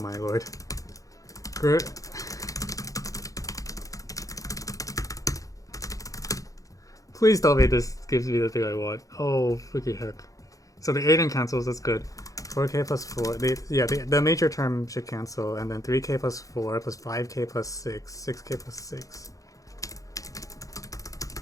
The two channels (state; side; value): late; right; 0.16 ms